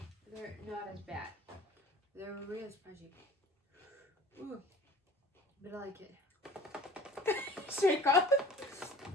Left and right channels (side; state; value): both; normal; correlation 0.45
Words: They're not as bad. They're real spicy. Ooh. But I like it. Shake up.